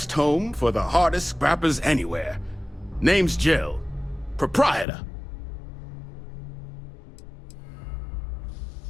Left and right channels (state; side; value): drops out; right; at 4.9 s